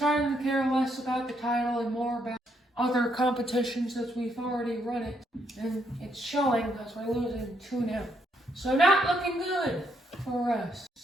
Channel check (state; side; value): normal; both; correlation 0.74